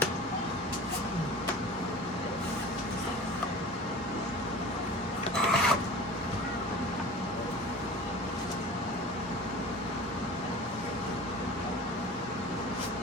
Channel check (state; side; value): normal; both; correlation 0.38